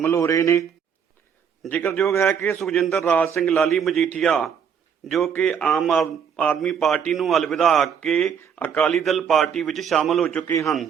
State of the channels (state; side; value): quieter; left; 7.5 dB